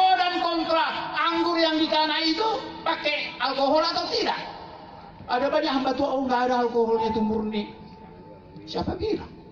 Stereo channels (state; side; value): identical; both; correlation 1.00